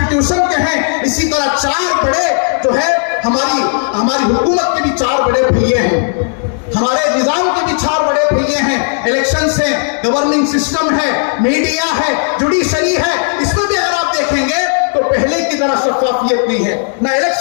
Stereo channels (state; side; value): silent; right; 58 dB below the other